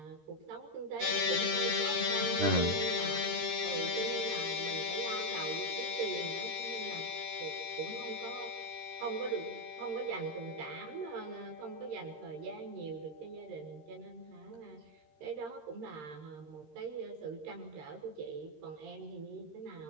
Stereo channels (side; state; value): left; late; 13 ms